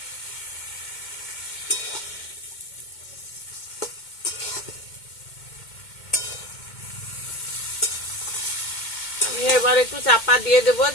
আমি এবার একটু চাপা দিয়ে দেবো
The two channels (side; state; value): right; late; 2.2 ms